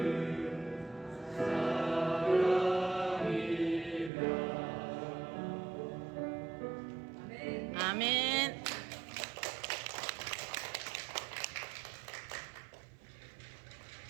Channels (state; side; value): drops out; left; at 4.1 s